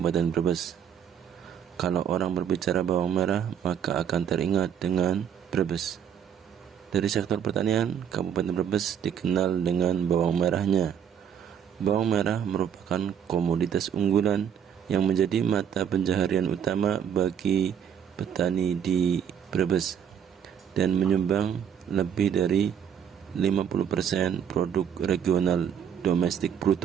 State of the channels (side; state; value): left; quieter; 8.5 dB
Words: Brebes. Kalau orang berbicara bawang merah, maka akan teringat dengan Brebes. Dari sektor pertanian, Kabupaten Brebes dikenal dengan bawang merahnya. Bawang merah merupakan komoditas unggulan yang menjadi mata pencaharian utama bagi petani di Brebes dan menyumbang lebih dari 50% produk regional domestik